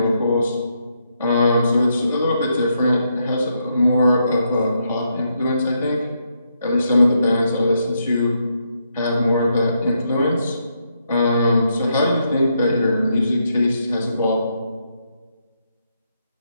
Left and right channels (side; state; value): both; inverted; correlation -0.79